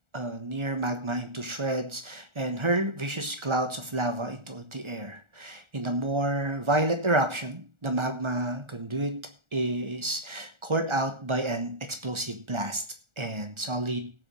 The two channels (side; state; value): left; late; 1.4 ms